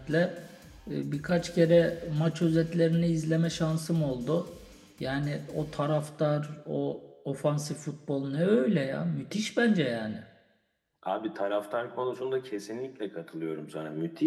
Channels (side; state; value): both; identical; correlation 1.00